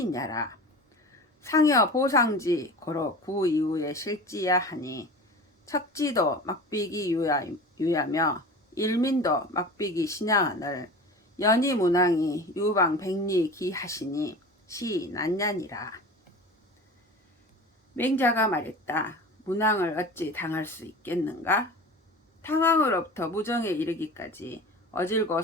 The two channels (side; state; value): both; normal; correlation 0.35